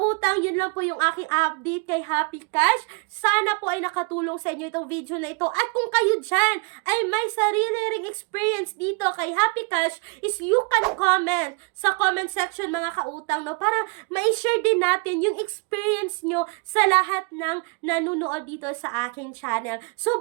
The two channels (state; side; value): quieter; left; 33.2 dB